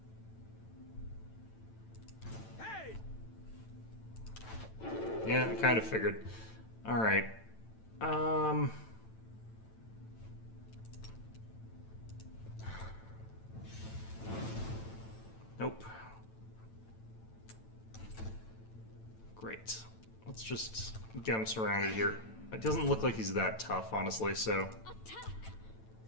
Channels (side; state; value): right; late; 9.0 ms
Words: Yeah, I kind of figured. Alright. Nope. Great. Let's just get him surrounded here. It doesn't look like he's that tough, honestly, so... Attack!